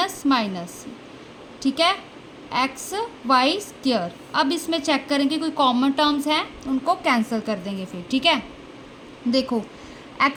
माइनस, ठीक है, एक्स वाई स्क्वायर। अब इसमें चेक करेंगे कोई कॉमन टर्म्स हैं, उनको कैंसिल कर देंगे फिर, ठीक है। देखो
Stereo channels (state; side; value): identical; both; correlation 1.00